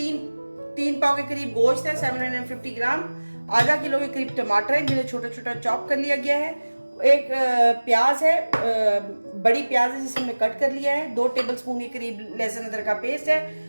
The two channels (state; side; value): inverted; both; correlation -1.00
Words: पाव के करीब गोश्त है, 750 ग्राम। आधा किलो के करीब टमाटर है जिन्हें छोटा छोटा चॉप कर लिया गया है। एक प्याज है, बड़ी प्याज है जिसे हमने कट कर लिया है। 2 टेबलस्पून के करीब लहसुन अदरक का पेस्ट है।